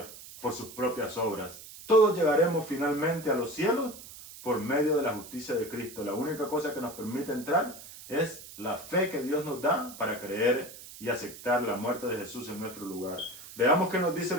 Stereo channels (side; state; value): right; noise; hiss, 15 dB below the sound